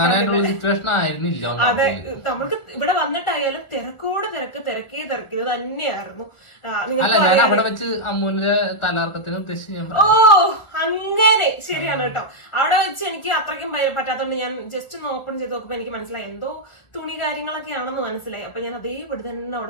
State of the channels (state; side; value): late; right; 1.6 ms